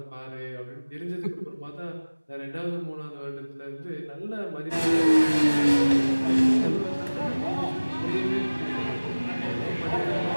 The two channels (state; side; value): inverted; both; correlation -1.00